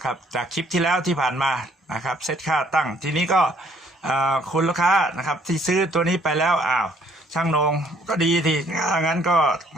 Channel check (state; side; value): normal; both; correlation 0.63